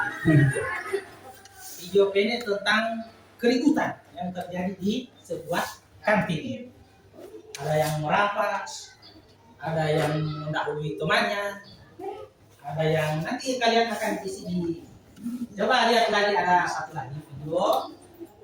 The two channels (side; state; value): both; identical; correlation 1.00